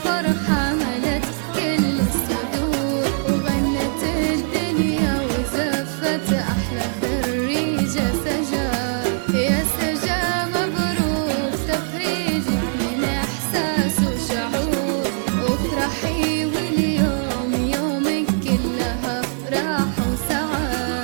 ملت كل الصدور، وغنت الدنيا وزفت أحلى خريجة سجا. يا سجا مبروك تخريجك من إحساس وشعور، وافرحي واليوم يومك كلها افراح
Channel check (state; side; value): silent; left; 63 dB below the other